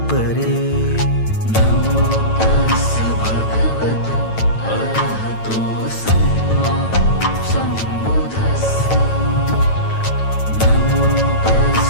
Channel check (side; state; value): right; late; 9.1 ms